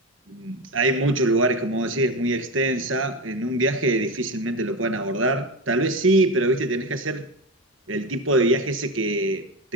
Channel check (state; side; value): normal; both; correlation 0.20